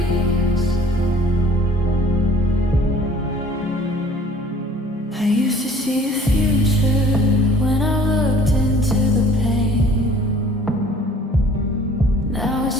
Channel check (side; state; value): both; normal; correlation 0.52